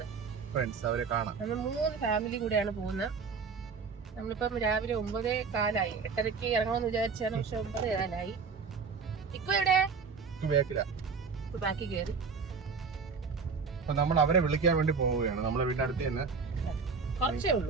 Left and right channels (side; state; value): left; quieter; 5.2 dB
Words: അവരെ കാണാം. നമ്മൾ 3 ഫാമിലി കൂടെയാണ് പോകുന്നത്. നമ്മളിപ്പം രാവിലെ 9:15 8:30 ഇറങ്ങണമെന്ന് വിചാരിച്ചാണ്, പക്ഷെ 9:15. ഇപ്പൊ എവിടെ? ബാക്കി കയറി. അപ്പൊ നമ്മൾ അവരെ വിളിക്കാൻ വേണ്ടി പോവുകയാണ്. നമ്മളെ വീടിന്റെ അടുത്ത് തന്നെ. കുറച്ചേ